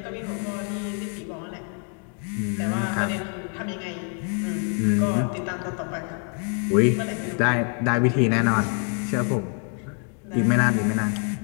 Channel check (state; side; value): quieter; right; 37.6 dB